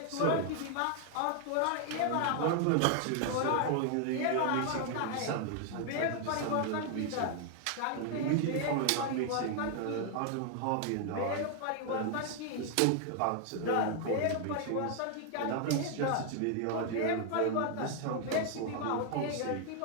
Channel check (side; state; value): both; different; correlation 0.00